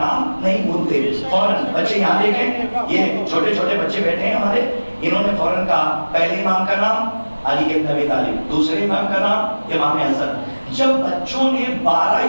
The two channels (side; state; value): both; inverted; correlation -1.00